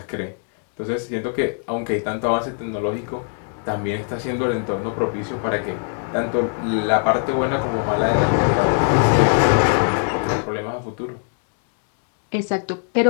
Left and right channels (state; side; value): silent; right; 55 dB below the other